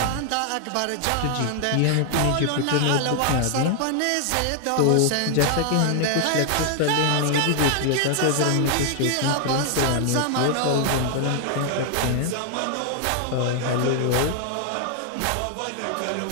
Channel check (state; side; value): different; both; correlation 0.00